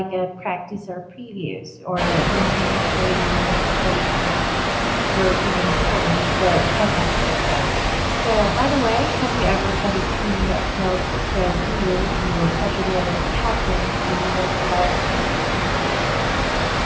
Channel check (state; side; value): identical; both; correlation 1.00